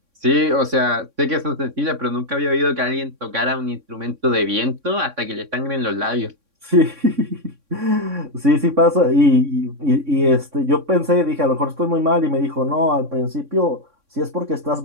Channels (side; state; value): left; late; 3.6 ms